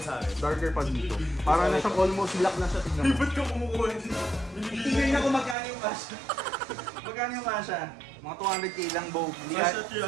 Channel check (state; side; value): drops out; left; at 5.6 s